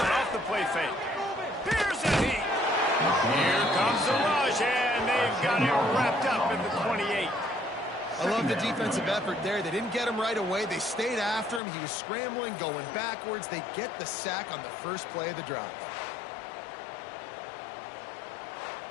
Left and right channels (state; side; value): drops out; right; at 11.6 s